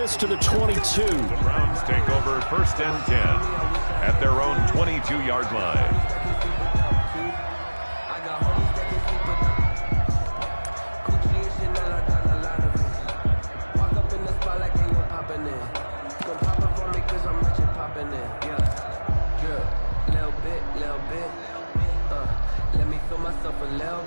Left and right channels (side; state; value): both; inverted; correlation -1.00